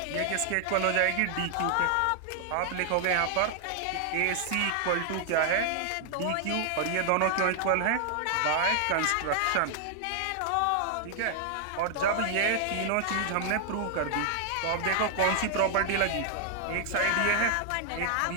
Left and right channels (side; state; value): both; different; correlation 0.00